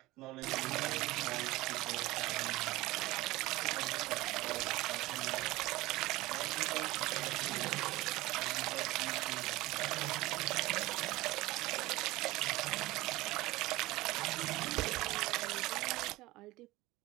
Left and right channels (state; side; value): quieter; left; 19.1 dB